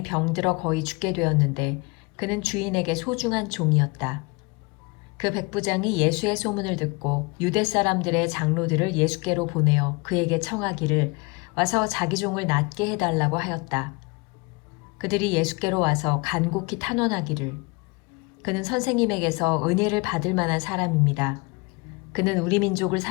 병들어 거의 죽게 되었는데 그는 주인에게 소중한 종이었다. 그 백부장이 예수의 소문을 듣고 유대 사람들의 장로들을 예수께로 보내어 그에게 청하기를 와서 자기 종을 낫게 해달라고 하였다. 그들이 예수께로 와서 간곡히 탄원하기를 그는 선생님에게서 은혜를 받을 만한 사람입니다. 그는 우리 민족을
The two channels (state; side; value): quieter; right; 27.2 dB